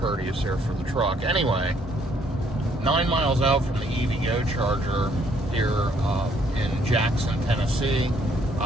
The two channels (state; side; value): normal; both; correlation 0.67